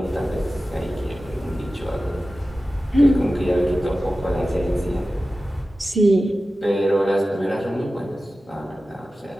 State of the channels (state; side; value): normal; both; correlation 0.95